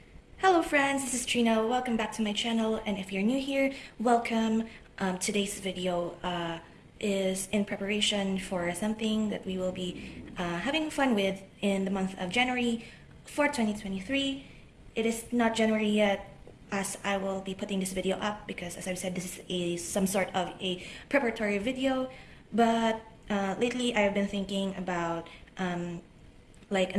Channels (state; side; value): identical; both; correlation 1.00